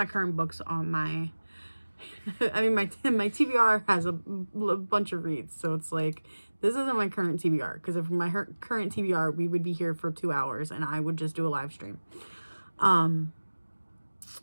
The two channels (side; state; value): both; inverted; correlation -1.00